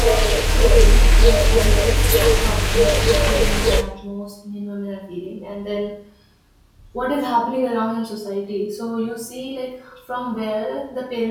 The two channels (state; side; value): identical; both; correlation 1.00